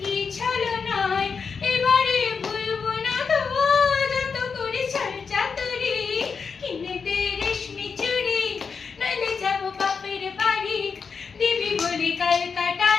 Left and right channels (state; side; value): quieter; right; 5.6 dB